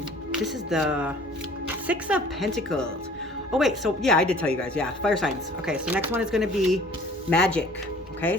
is the Six of Pentacles. Oh wait, so yeah, I did tell you guys, yeah, fire signs. Okay, so next one is going to be magic. Okay,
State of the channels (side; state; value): both; normal; correlation 0.51